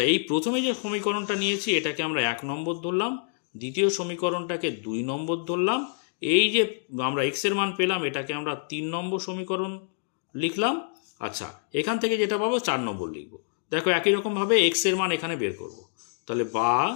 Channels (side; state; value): right; silent; digital silence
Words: এই প্রথমে যে সমীকরণটা নিয়েছি এটাকে আমরা 1 নম্বর ধরলাম, দ্বিতীয় সমীকরণটাকে 2 নম্বর ধরলাম, এই যে আমরা x এর মান পেলাম এটাকে আমরা 3 নম্বর সমীকরণ লিখলাম। আচ্ছা এখান থেকে যেটা পাবো 4 নম্বর লিখব, দেখো একই রকমভাবে x এর মান এখানে বের করব, তাহলে বা